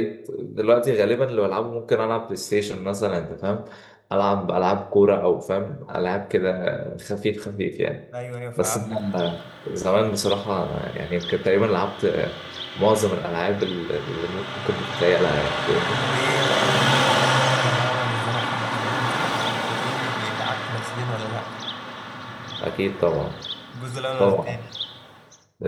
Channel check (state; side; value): identical; both; correlation 1.00